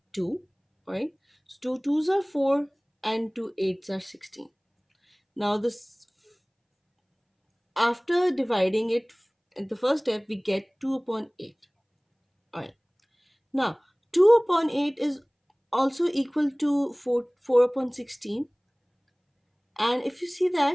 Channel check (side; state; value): both; identical; correlation 1.00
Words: 2, right? So 2 2s are 4 and 2 8s are 16. Now, this, after dividing it in the first step, we get 2 upon 8. All right. Now, 2 upon 8 is also equal to 4 upon 16. And if you see